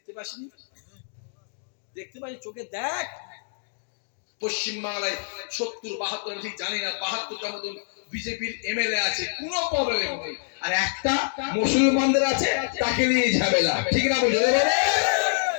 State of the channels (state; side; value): silent; right; digital silence